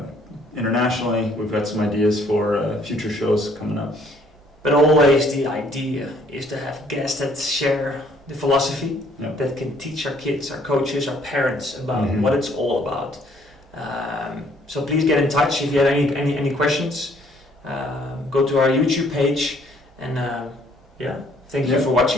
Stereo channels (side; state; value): both; normal; correlation 0.62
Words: internationally. We've got some ideas for future shows coming up. But always the idea is to have guests that share the philosophy, that can teach our kids, our coaches, our parents about what it's all about. So please get in touch if you have any questions. Go to our YouTube page, and thank you for